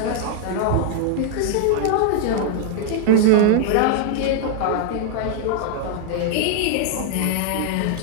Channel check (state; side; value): different; both; correlation 0.00